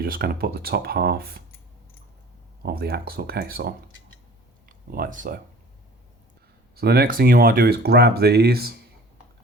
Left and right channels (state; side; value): normal; both; correlation 0.46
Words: just going to put the top half of the axle case on, like so. So the next thing you want to do is grab these